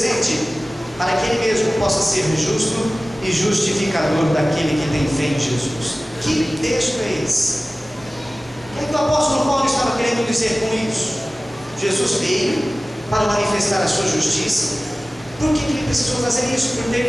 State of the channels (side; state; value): both; normal; correlation 0.97